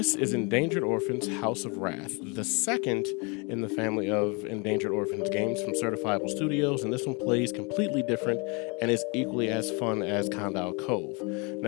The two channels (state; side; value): quieter; right; 31.2 dB